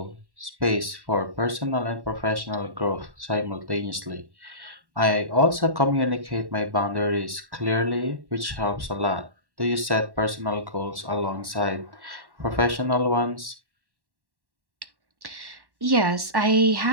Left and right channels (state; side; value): late; left; 1.1 ms